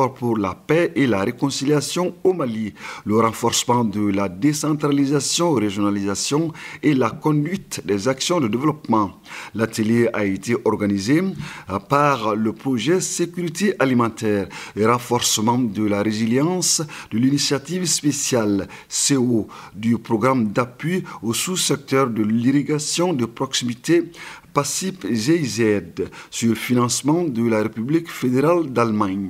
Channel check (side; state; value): both; identical; correlation 1.00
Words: pour la paix et la réconciliation au Mali, le renforcement de la décentralisation, régionalisation et la conduite des actions de développement. L'atelier a été organisé par le projet sécurité alimentaire et renforcement de la résilience de l'initiative spéciale CO du programme d'appui au sous-secteur de l'irrigation de proximité PACIP-GIZ sur le financement de la République fédérale